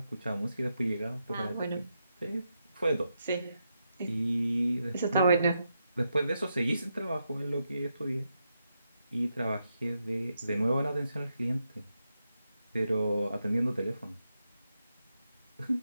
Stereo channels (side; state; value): both; inverted; correlation -0.84